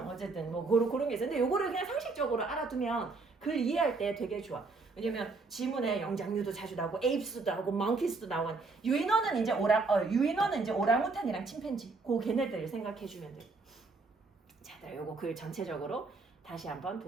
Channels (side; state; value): left; quieter; 3.9 dB